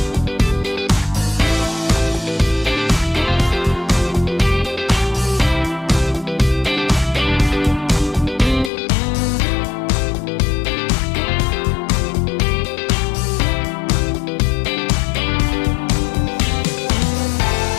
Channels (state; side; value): drops out; right; at 8.7 s